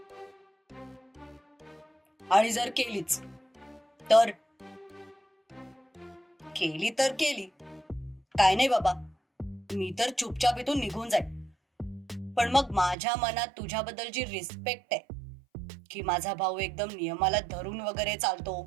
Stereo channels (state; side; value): drops out; left; at 13.0 s